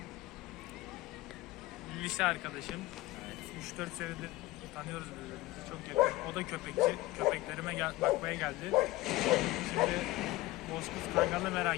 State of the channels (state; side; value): quieter; right; 18.7 dB